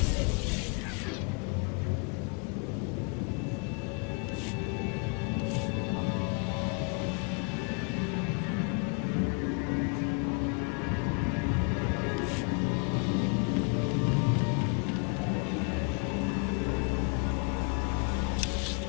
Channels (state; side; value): quieter; right; 36.4 dB